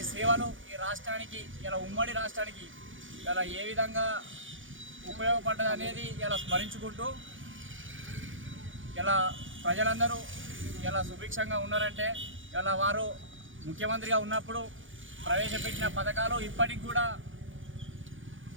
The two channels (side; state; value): left; late; 0.57 ms